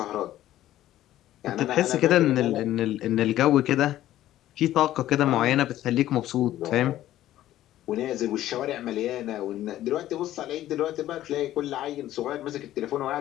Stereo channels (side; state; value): right; quieter; 13.6 dB